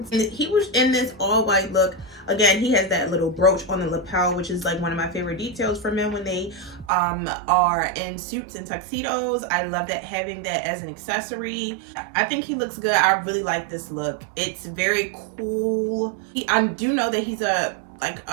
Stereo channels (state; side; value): drops out; left; at 6.9 s